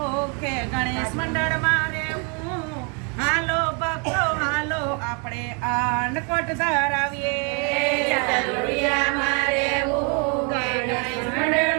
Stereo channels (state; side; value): quieter; left; 36.3 dB